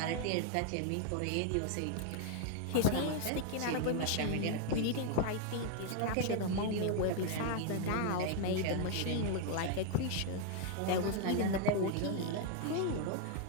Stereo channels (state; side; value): different; both; correlation 0.00